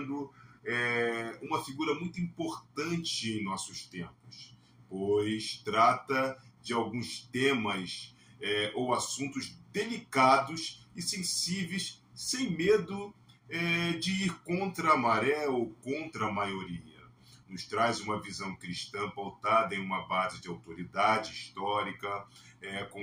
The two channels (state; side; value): identical; both; correlation 1.00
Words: uma figura muito importante em nossos tempos, pois trata de alguns temas ou assuntos delicados e sensíveis, sem medo de ir contra a maré ou contra a maioria. Nos traz uma visão cristã pautada em uma base de autoridade histórica, com